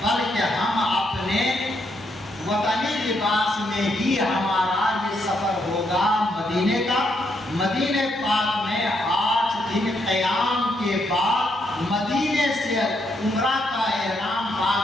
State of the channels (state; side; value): normal; both; correlation 0.77